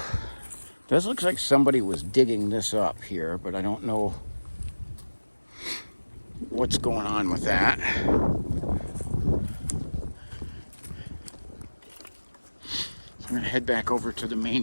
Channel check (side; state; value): both; inverted; correlation -1.00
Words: this looks like somebody was digging this up here, but I don't know what's going on with that. I'm going to head back over to the